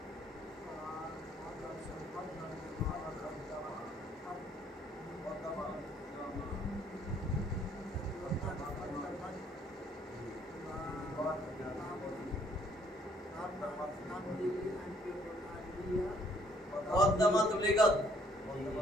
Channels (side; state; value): both; normal; correlation 0.65